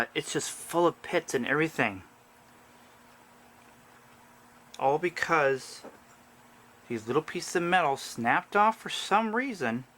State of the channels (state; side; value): identical; both; correlation 1.00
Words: it's just full of pits and everything. All because these little pieces of metal snapped off for some reason